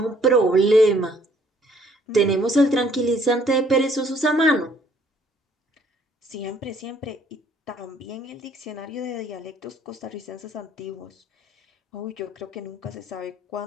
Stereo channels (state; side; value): normal; both; correlation 0.62